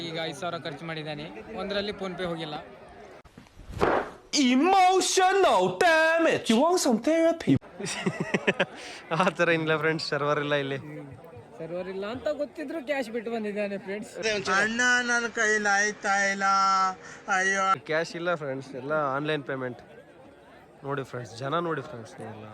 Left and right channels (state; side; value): identical; both; correlation 1.00